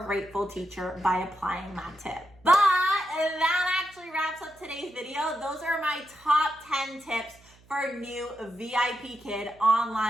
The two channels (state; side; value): noise; right; hum, 28 dB below the sound